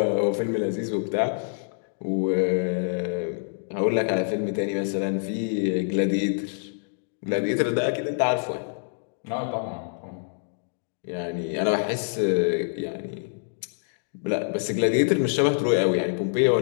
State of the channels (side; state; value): right; silent; digital silence